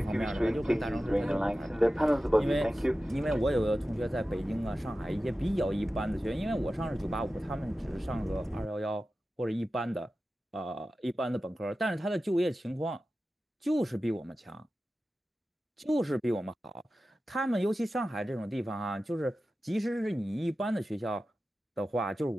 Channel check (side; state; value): both; normal; correlation 0.94